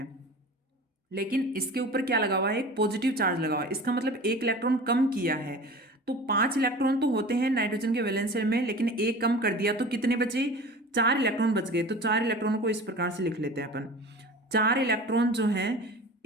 लेकिन इसके ऊपर क्या लगा हुआ है, एक पॉजिटिव चार्ज लगा हुआ है, इसका मतलब एक इलेक्ट्रॉन कम किया है। तो 5 इलेक्ट्रॉन तो होते हैं नाइट्रोजन के वैलेंस शेल में, लेकिन एक कम कर दिया, तो कितने बचे, 4 इलेक्ट्रॉन बच गए। तो 4 इलेक्ट्रॉन को इस प्रकार से लिख लेते हैं अपन। 4 इलेक्ट्रॉन जो हैं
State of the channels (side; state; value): both; normal; correlation 0.37